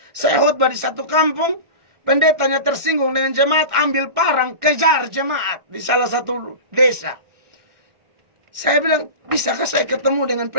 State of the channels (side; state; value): left; late; 1.4 ms